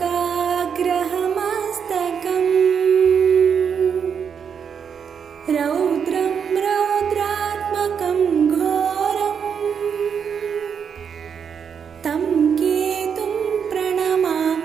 रौद्रं रौद्रात्मकं घोरम् तं केतुं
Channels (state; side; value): quieter; left; 7.1 dB